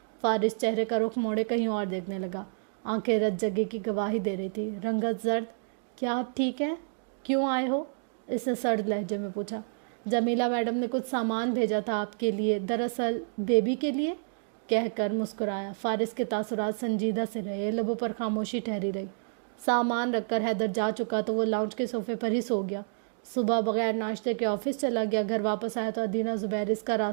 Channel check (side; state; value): left; silent; digital silence